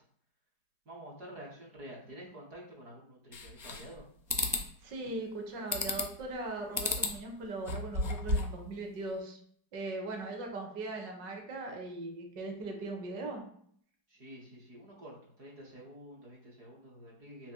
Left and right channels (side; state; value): left; late; 4.7 ms